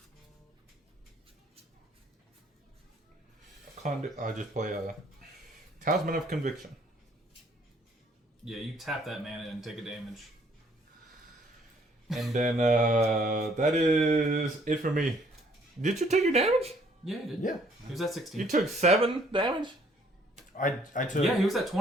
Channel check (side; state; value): both; normal; correlation 0.62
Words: I'll just play a Talisman of Conviction. Yeah, you tap that mana and take a damage. And then that is it for me. Did you take your damage? Yeah, he did. Yeah. He was at 16. You took 7 damage? I took. Yeah, he was at